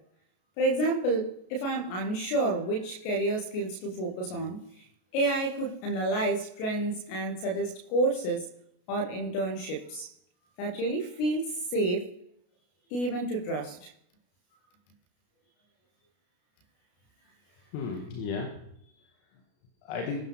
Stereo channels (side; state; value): right; late; 33 ms